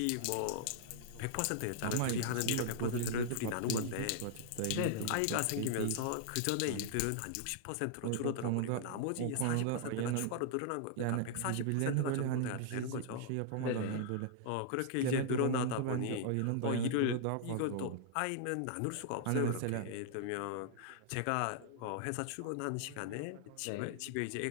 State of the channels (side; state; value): both; different; correlation -0.01